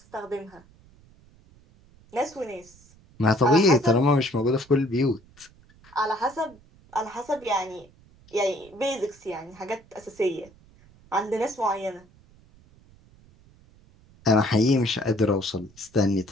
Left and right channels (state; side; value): noise; right; rumble, 27 dB below the sound